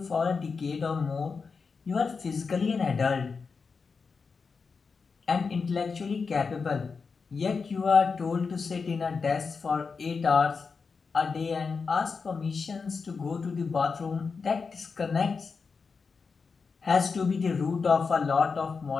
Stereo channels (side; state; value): right; quieter; 5.0 dB